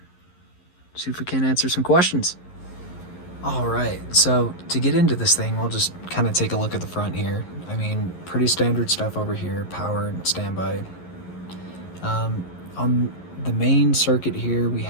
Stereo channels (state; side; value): late; right; 11 ms